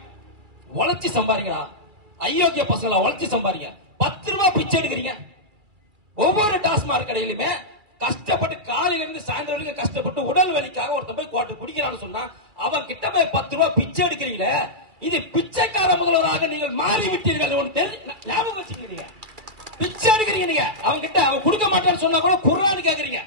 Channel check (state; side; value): late; left; 2.3 ms